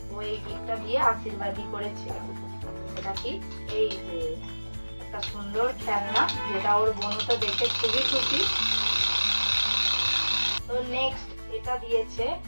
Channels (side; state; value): both; inverted; correlation -1.00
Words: ও এই গিফটটা দিয়ে আশীর্বাদই করেছে। সেটা কি? এই যে একটা সুন্দর খেলনা, যেটা ওর বোন তো দেখে খুবই খুশি। তো নেক্সট এটা দিয়েছে